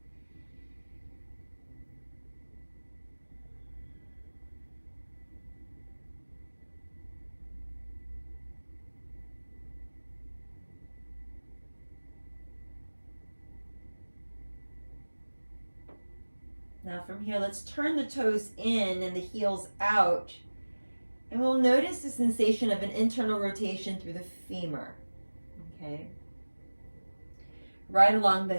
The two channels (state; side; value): inverted; both; correlation -1.00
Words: Now from here, let's turn the toes in and the heels out. And we'll notice the sensation of an internal rotation through the femur, okay? Right along the